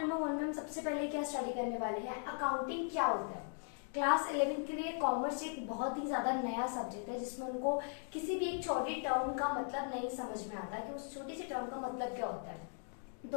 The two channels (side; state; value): right; silent; 52 dB below the other